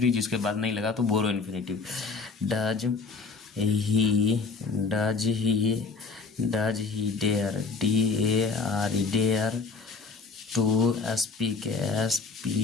जिसके बाद नहीं लगा तो बोरो infinitive. Does he dare, DARE dare to speak,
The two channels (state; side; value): quieter; right; 4.2 dB